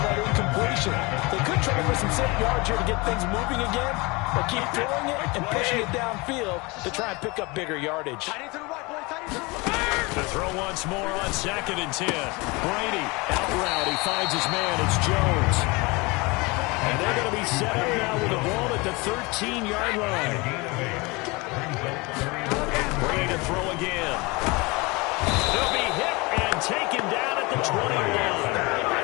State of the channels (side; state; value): right; quieter; 25.5 dB